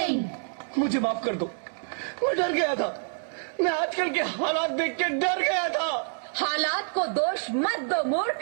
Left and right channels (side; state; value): left; silent; digital silence